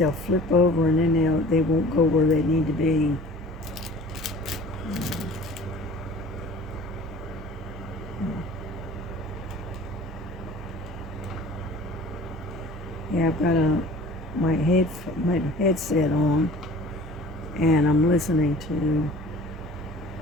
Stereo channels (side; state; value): both; normal; correlation 0.45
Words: flip over and then they won't go where they need to be. Yeah, I've got my headset on, and I'm listening to